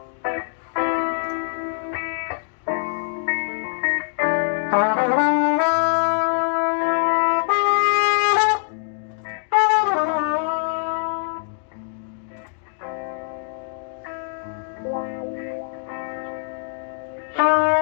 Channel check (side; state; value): right; silent; digital silence